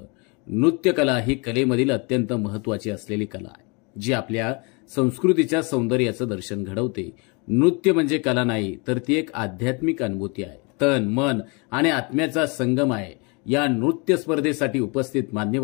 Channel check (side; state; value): right; quieter; 31.1 dB